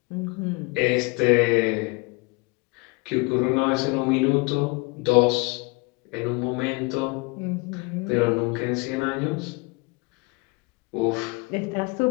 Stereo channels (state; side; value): quieter; right; 27.5 dB